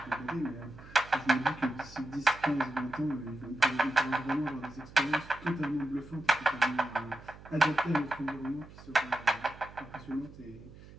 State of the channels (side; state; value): right; noise; hum, 19 dB below the sound